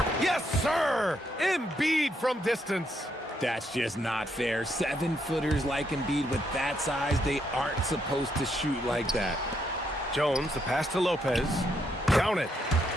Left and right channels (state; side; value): normal; both; correlation 0.76